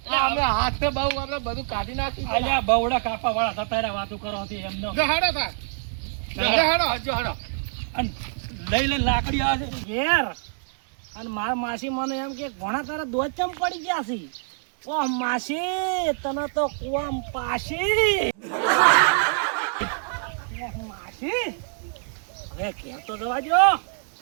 અમે હાથ બહુ આપણે બધું કાઢી નાખ્યું અલ્યા બવડા કાપા વાળા થતા રહ્યા વાતો કરો છે એમનો જો હાડો થા. જો હાડો. જો હડો અને લઈ લઈને લાકડી આવે છે ઘેર અને માર માસી મને એમ કે ઘણા તારા દોધ ચમ પડી ગયા છે ઓ માસી તને તો કુવામ પાસી ઓહ, માસી હવે ઘેર તો જવા દો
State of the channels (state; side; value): silent; left; digital silence